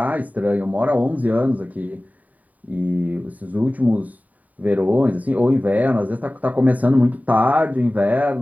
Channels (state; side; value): late; left; 0.073 ms